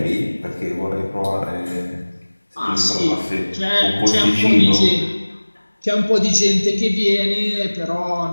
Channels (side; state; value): both; inverted; correlation -1.00